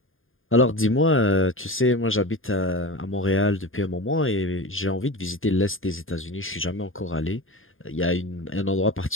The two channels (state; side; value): late; right; 0.59 ms